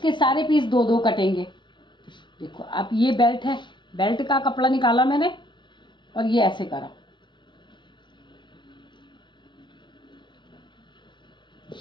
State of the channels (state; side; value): late; right; 0.23 ms